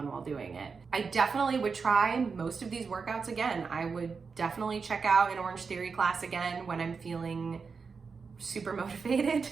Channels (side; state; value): left; quieter; 5.2 dB